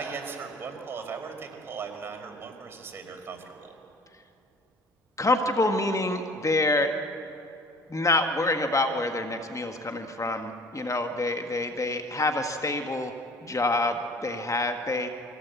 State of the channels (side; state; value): both; normal; correlation 0.47